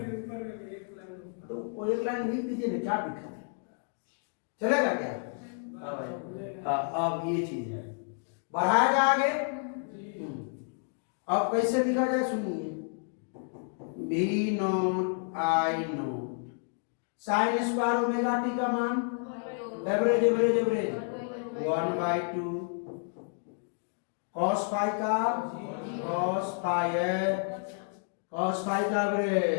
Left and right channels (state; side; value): silent; right; 56 dB below the other